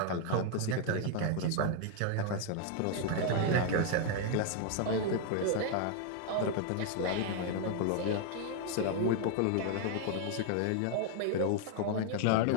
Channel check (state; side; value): different; both; correlation 0.00